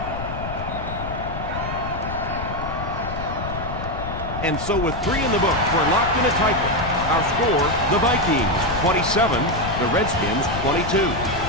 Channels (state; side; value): noise; left; rumble, 7 dB below the sound